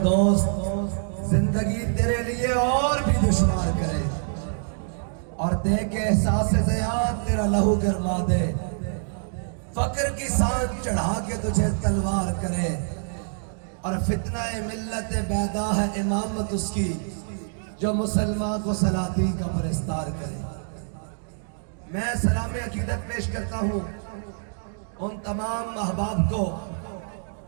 دوست زندگی تیرے لیے اور بھی دشوار کرے، اور دے کے احساس زیاد تیرا لہو گرما دے، فقر کی سانگ چڑھا کے تجھے تلوار کرے، اور فتنہ ملت بیدا ہے امامت اس کی جو مسلمان کو سلاطین کا پرستار کرے۔ میں سلام عقیدت پیش کرتا ہوں ان تمام احباب کو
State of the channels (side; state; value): left; silent; digital silence